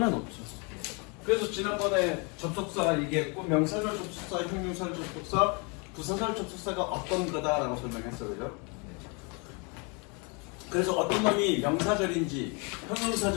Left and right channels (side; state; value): right; quieter; 32.5 dB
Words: 놓죠. 그래서 지난번에 접속사 얘기했고 명사절 접속사, 형용사절 접속사, 부사절 접속사가 어떤 거다라고 설명했어요. 그죠? 그래서 어떤 놈이 명사절인지